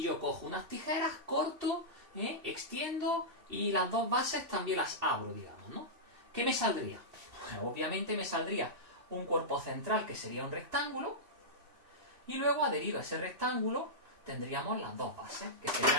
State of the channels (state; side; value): late; left; 2.6 ms